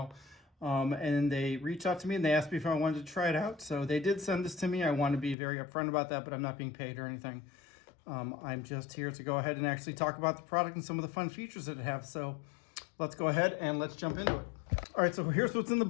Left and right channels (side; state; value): right; drops out; at 5.4 s